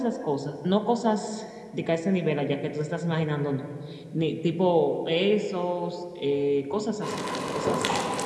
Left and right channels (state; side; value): identical; both; correlation 1.00